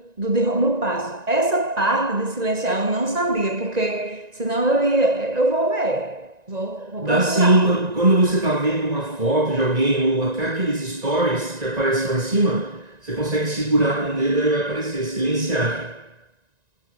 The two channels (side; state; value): left; late; 1.9 ms